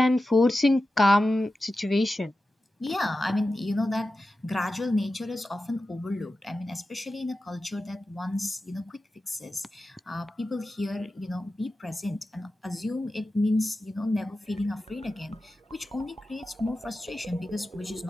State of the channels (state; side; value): normal; both; correlation 0.93